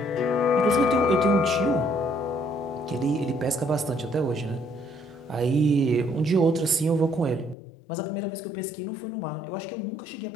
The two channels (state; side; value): drops out; right; at 7.6 s